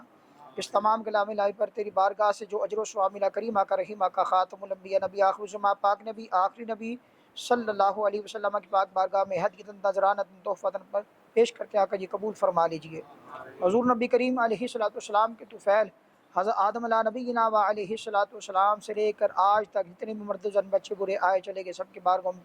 اس تمام کلام الہی پر تیری بارگاہ سے جو اجر و ثواب ملا، کریم آقا رحیم آقا خاتم الانبیاء نبی آخر الزمان پاک نبی آخری نبی صلی اللہ علیہ وسلم کی پاک بارگاہ میں ہدیۃ نذرانہ تحفۃ پر پیش کر کے آقا جی قبول فرما لیجئے. حضور نبی کریم علیہ الصلوۃ والسلام کے طفیل حضرت آدم علیہ نبینا و علیہ الصلوۃ والسلام سے لے کر آج تک جتنے بھی مرد زن بچے برے آئے چلے گئے سب کی بارگاہ میں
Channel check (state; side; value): identical; both; correlation 1.00